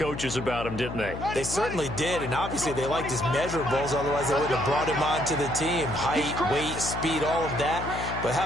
about him, didn't they? They certainly did, and obviously they liked his measurables. Otherwise, they wouldn't have brought him onto the team. Height, weight, speed, all of that. But how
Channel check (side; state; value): left; noise; hum, 7 dB below the sound